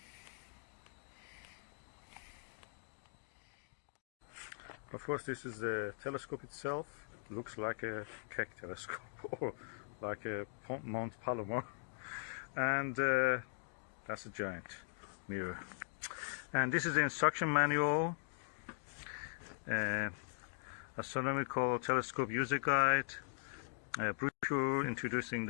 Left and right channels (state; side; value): silent; right; digital silence